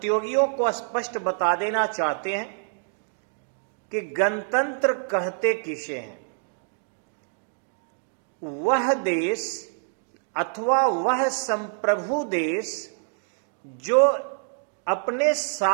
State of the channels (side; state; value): left; silent; digital silence